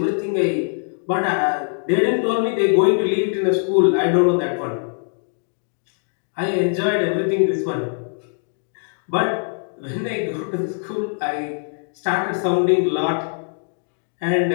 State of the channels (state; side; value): silent; right; digital silence